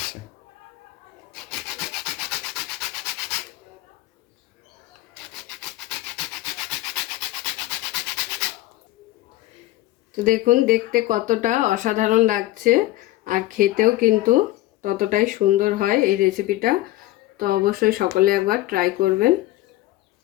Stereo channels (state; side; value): quieter; right; 16.7 dB